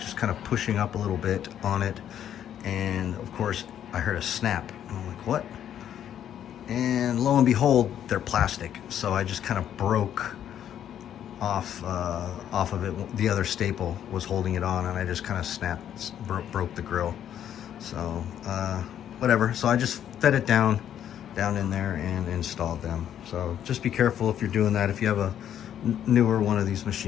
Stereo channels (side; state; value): right; quieter; 10.1 dB